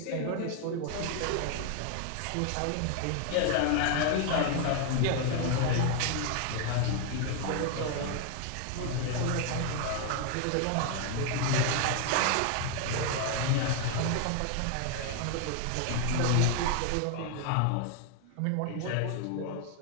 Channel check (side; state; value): both; different; correlation 0.00